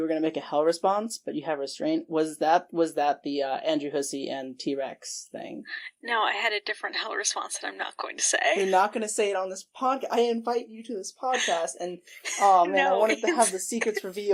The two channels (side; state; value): both; identical; correlation 1.00